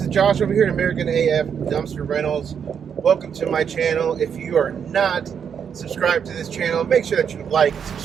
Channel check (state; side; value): quieter; left; 7.5 dB